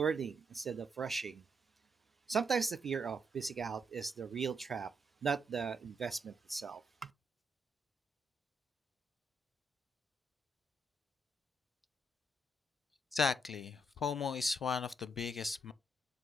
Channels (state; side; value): normal; both; correlation 0.77